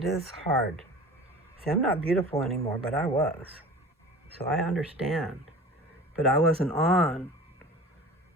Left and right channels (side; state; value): both; normal; correlation 0.39